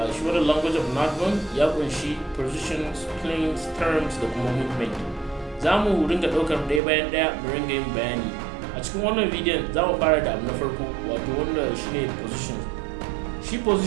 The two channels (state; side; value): drops out; left; at 6.8 s